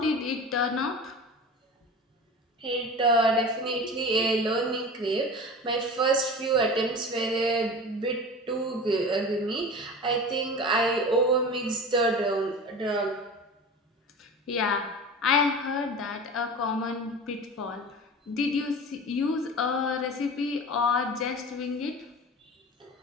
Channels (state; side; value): normal; both; correlation 0.34